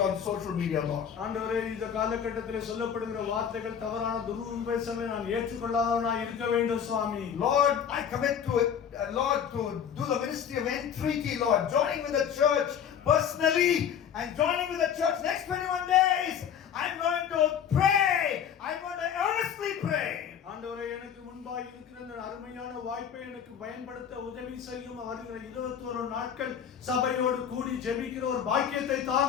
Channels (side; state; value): right; quieter; 8.3 dB